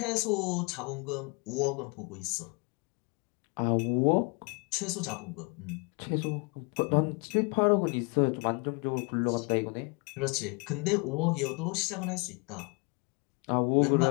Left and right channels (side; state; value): right; quieter; 31.3 dB